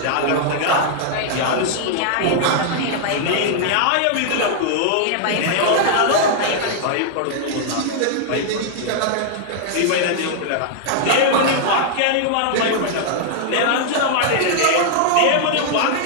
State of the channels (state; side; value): different; both; correlation -0.01